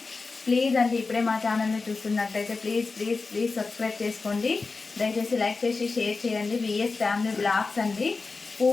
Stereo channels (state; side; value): quieter; right; 4.1 dB